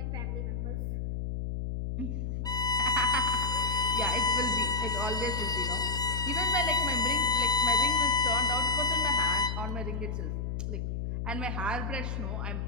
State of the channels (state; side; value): noise; left; hum, 3 dB below the sound